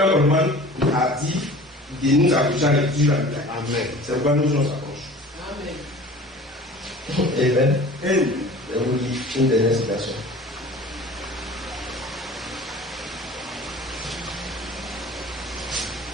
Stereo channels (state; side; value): normal; both; correlation 0.43